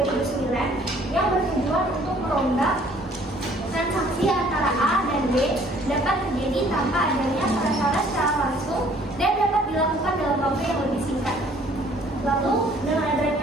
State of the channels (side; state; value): both; normal; correlation 0.58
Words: yang bertujuan untuk merombak transaksi antara A dan B dapat terjadi tanpa adanya perantara secara langsung dan dapat dilakukan dalam waktu yang lebih singkat. Lalu dengan